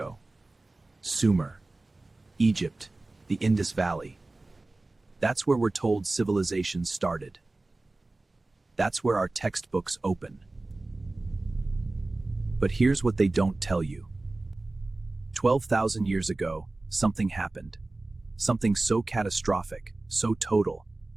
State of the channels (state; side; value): quieter; left; 3.0 dB